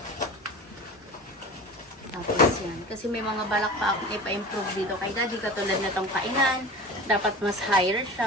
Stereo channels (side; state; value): both; normal; correlation 0.35